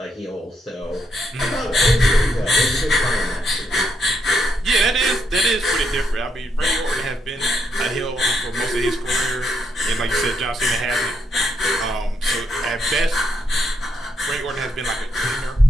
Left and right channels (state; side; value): normal; both; correlation 0.78